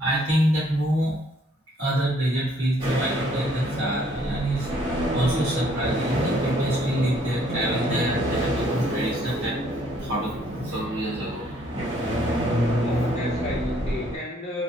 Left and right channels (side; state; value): both; normal; correlation 0.64